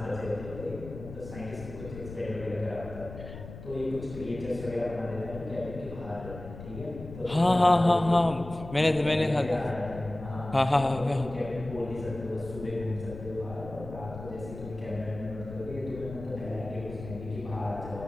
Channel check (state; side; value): noise; left; rumble, 12 dB below the sound